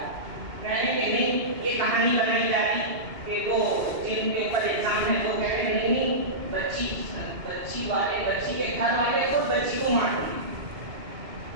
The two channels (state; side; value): late; left; 2.8 ms